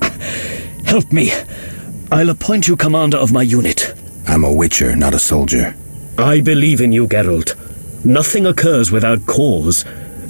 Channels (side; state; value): both; inverted; correlation -1.00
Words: Help me. I'll appoint you commander of my unit. I'm a witcher, not a soldier. I believe in you, Geralt. Nothing occurs without cause.